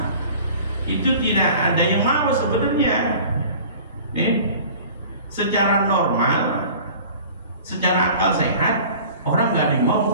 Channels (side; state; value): both; inverted; correlation -0.44